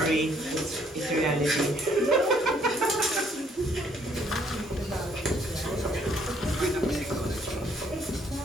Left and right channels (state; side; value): normal; both; correlation 0.65